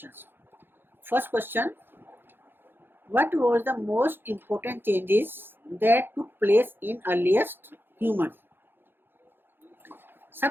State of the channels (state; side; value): late; left; 0.10 ms